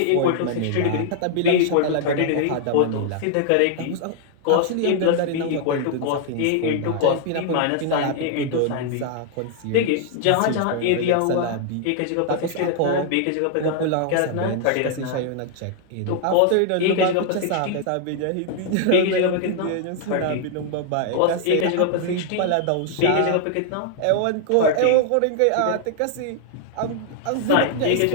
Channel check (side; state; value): both; different; correlation 0.00